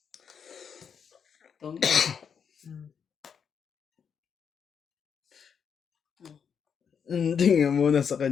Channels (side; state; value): right; quieter; 7.0 dB